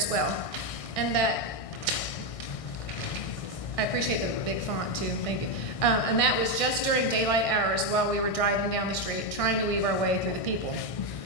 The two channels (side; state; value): right; late; 1.6 ms